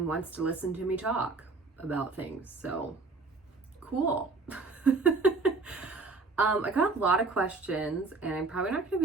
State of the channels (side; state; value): left; quieter; 3.9 dB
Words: wants to listen to me talk about things. So cool. I got a lot of questions and I'm probably not going